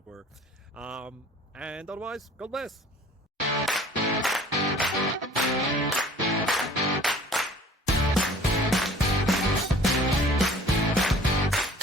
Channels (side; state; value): both; normal; correlation 0.49